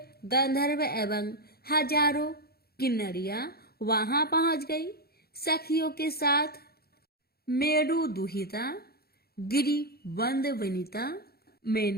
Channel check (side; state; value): right; late; 0.45 ms